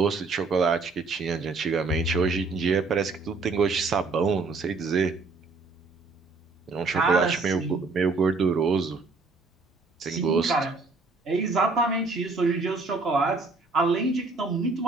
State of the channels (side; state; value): left; quieter; 3.9 dB